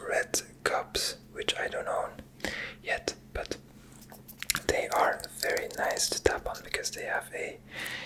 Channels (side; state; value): both; identical; correlation 1.00